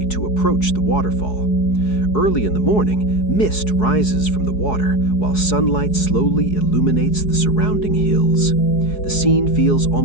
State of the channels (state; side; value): late; right; 4.7 ms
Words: to approach the waterfall. Early in the morning, mist rises from the water, while sunlight slowly illuminates the surrounding hills. The scene feels